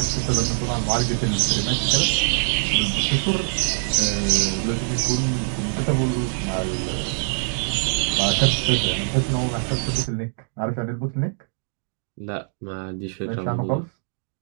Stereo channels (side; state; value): left; silent; digital silence